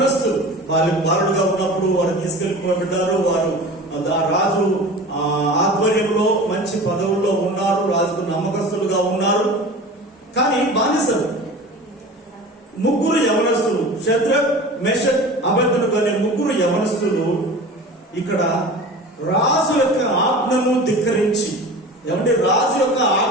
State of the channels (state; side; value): normal; both; correlation 0.36